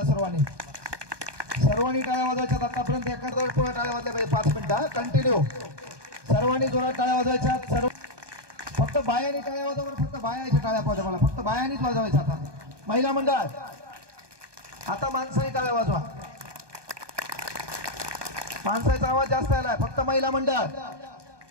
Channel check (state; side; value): late; left; 1.2 ms